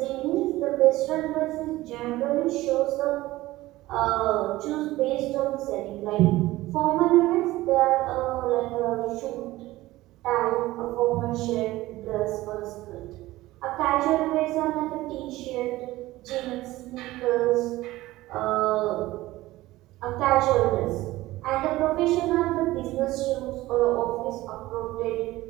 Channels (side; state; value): left; quieter; 17.5 dB